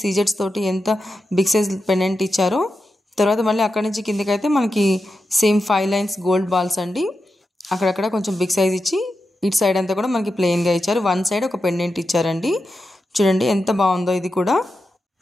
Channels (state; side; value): normal; both; correlation 0.89